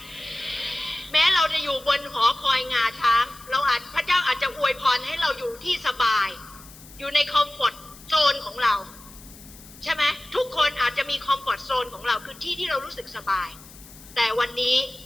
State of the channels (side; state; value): left; noise; hiss, 20 dB below the sound